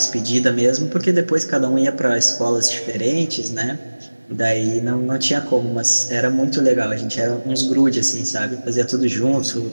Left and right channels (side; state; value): both; inverted; correlation -1.00